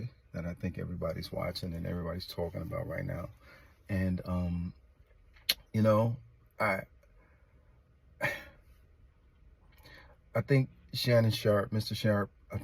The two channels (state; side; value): identical; both; correlation 1.00